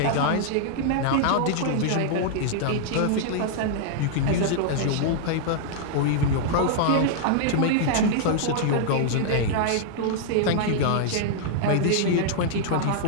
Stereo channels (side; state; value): both; different; correlation -0.01